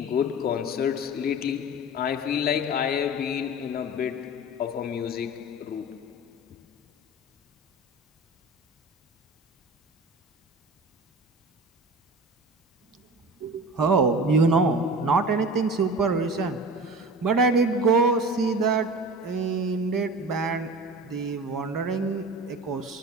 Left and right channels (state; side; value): normal; both; correlation 0.35